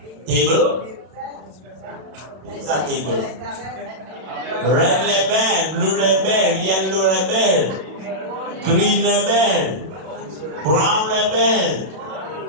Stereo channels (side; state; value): left; late; 32 ms